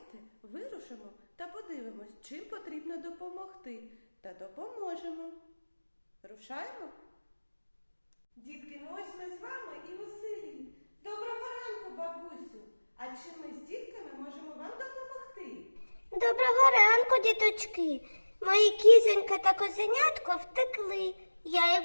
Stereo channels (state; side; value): inverted; both; correlation -1.00